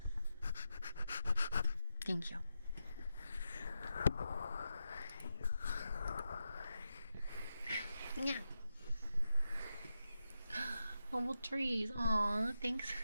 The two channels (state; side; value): inverted; both; correlation -0.89